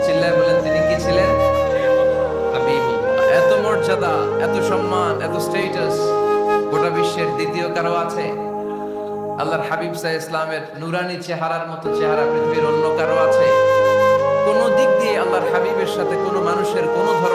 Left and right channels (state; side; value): identical; both; correlation 1.00